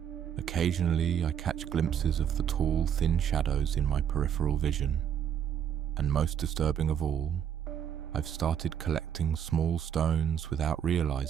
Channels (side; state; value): left; quieter; 9.0 dB